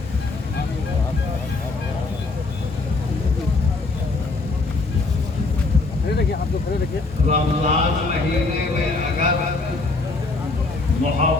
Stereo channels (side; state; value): right; quieter; 3.5 dB